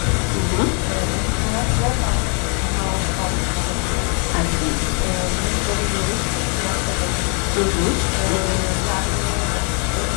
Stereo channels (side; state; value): right; quieter; 37.6 dB